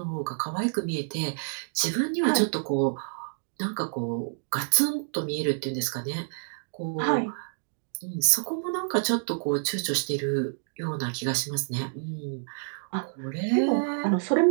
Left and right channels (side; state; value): left; silent; digital silence